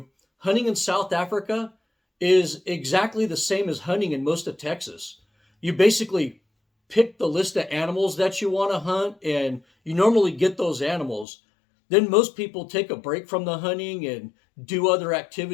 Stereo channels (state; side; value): drops out; right; at 11.2 s